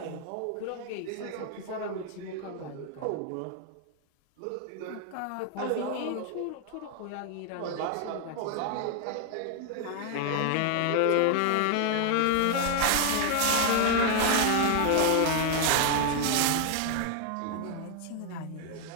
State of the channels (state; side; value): different; both; correlation 0.00